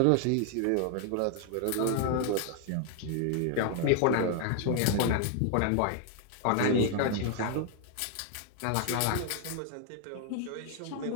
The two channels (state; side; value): different; both; correlation 0.00